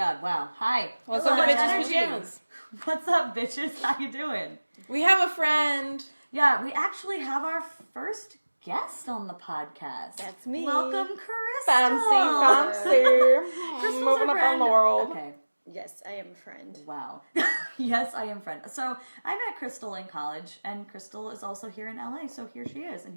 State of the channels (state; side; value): inverted; both; correlation -1.00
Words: wow. Hi. What's up, bitches' Energy. pajamas? What's up, bitches? How you doing? We have a friend. Yeah, we actually have our first guest on the podcast. That's me. Welcome, Crystal. Fancy. Crystal's Moving our up friend. on the world. Okay. Yes, I am a friend. Wow. Yes, I am friend. So I met Crystal in college, and Crystal is also here in LA. So here she is, and